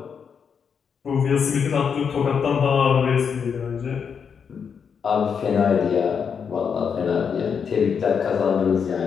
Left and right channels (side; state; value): right; quieter; 6.7 dB